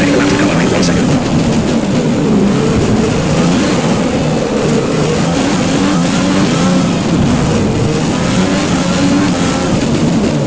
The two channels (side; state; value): both; identical; correlation 1.00